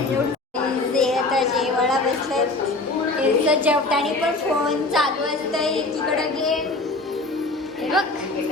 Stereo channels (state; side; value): quieter; right; 3.0 dB